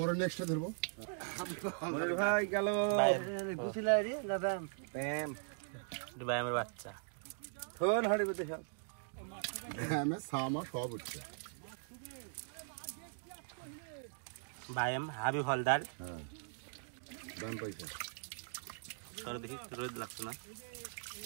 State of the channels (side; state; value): left; silent; digital silence